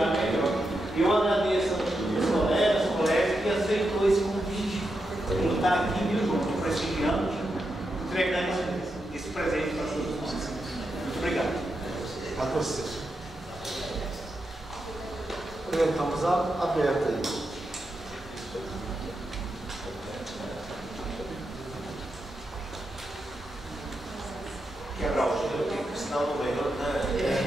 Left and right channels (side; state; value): both; normal; correlation 0.86